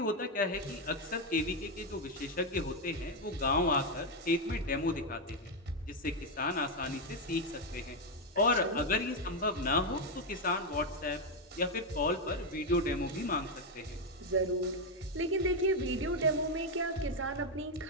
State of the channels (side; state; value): both; normal; correlation 0.04